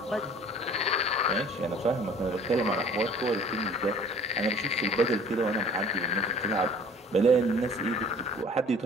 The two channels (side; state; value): both; normal; correlation 0.49